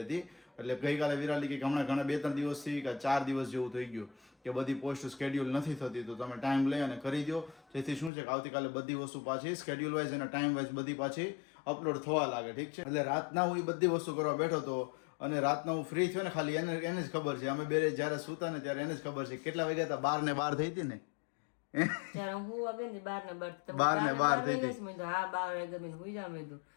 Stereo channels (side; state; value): right; drops out; at 8.1 s